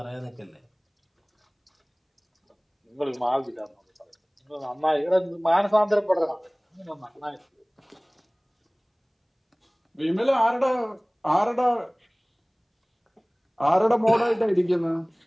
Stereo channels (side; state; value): both; identical; correlation 1.00